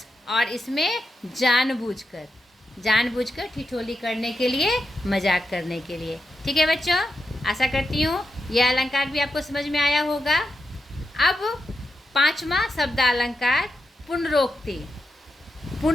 और इसमें जानबूझकर ठिठोली करने के लिए, मजाक करने के लिए। ठीक है बच्चों, आशा करती हूँ यह अलंकार भी आपको समझ में आया होगा। अब 5वां शब्द अलंकार पुनरोक्ति।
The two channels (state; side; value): normal; both; correlation 0.87